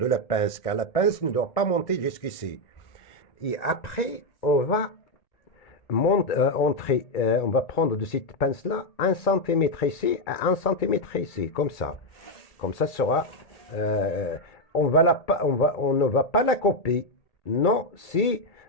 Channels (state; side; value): late; right; 2.3 ms